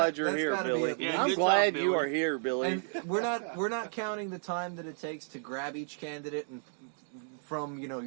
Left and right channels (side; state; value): left; silent; 56 dB below the other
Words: you're that's here, gotta be Billy. at Yeah, I'm good glad job, you Billy. are here, Billy. And we're not counting the time that it takes to grab each candidate and from your